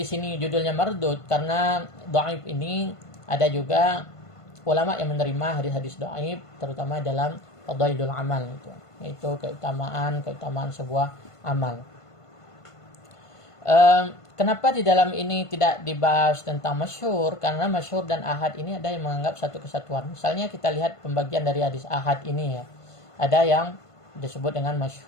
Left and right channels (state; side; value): late; right; 1.5 ms